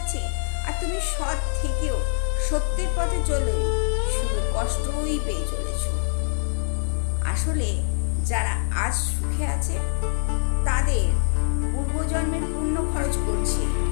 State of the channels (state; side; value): silent; right; digital silence